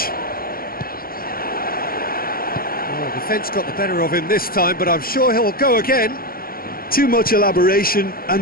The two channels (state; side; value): late; right; 0.43 ms